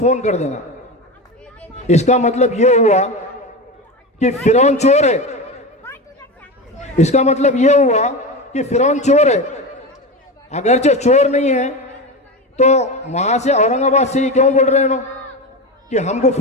कर देना। इसका मतलब ये हुआ कि फिरौन चोर है। इसका मतलब ये हुआ कि फिरौन चोर है। अगरचे चोर नहीं है तो वहां से औरंगाबाद से ही क्यों बोल रहे हैं कि हमको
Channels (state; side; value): normal; both; correlation 0.21